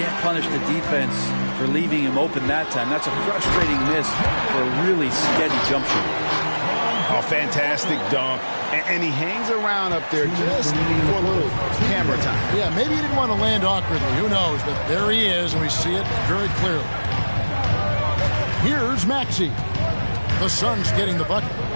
punish the defense for leaving him open that time. That's a frustrating miss for a really steady jump shot. A fantastic dunk. And he hangs around up there just for a little camera time. Yeah, maybe he didn't want to land awkwardly. Who knows? But there he is, and we see it very clearly. Here's Maxey. The Suns getting the bucket.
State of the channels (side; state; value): both; inverted; correlation -1.00